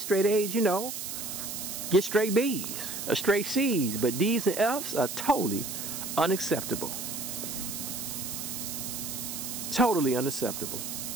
straight A's, you know, get straight B's or straight C's. But D's and F's are totally unacceptable. Totally unacceptable.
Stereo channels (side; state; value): right; noise; hiss, 6 dB below the sound